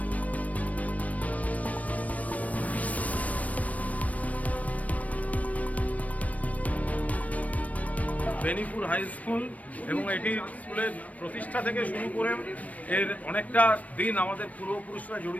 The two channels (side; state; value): right; late; 0.069 ms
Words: বেনিপুর হাই স্কুল এবং এটি স্কুলের প্রতিষ্ঠা থেকে শুরু করে এর অনেকটা দিন আমাদের পূর্বপুরুষরা